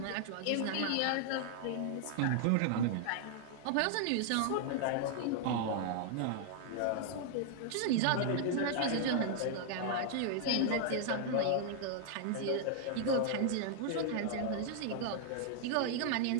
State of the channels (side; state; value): both; different; correlation 0.00